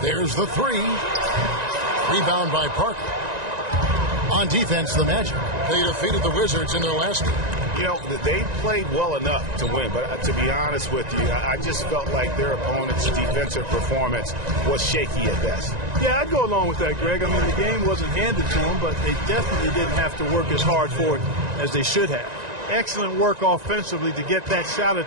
There's the three. Rebound by Parker. On defense, the Magic. They defeated the Wizards in their last game. You know, they played well enough to win, but to be honest with you, I just felt like their opponent's defensive performance was shaky at best. Yeah, I'd go along with that, Greg. I mean, the game wasn't handed to them, but they definitely didn't have to work as hard for it as they should have. Excellent work offensively to get that shot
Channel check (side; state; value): left; late; 1.9 ms